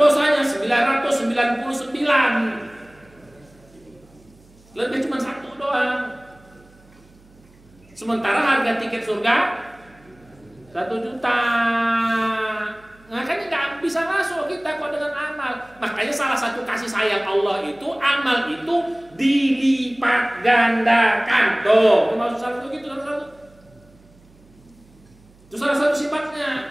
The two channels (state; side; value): noise; right; hum, 28 dB below the sound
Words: 999, lebih cuma 1 doang. Sementara harga tiket surga 1 juta. Makanya nggak bisa masuk kita kok dengan amal. Makanya salah satu kasih sayang Allah itu, amal itu dilipat gandakan. Tuh, itu maksud salah satu gitu, itu salah satu